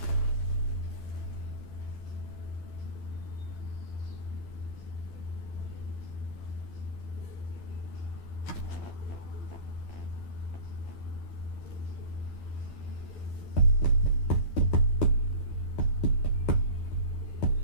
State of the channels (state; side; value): late; right; 12 ms